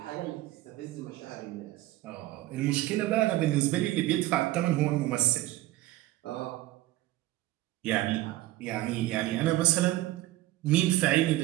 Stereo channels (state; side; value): quieter; left; 16.5 dB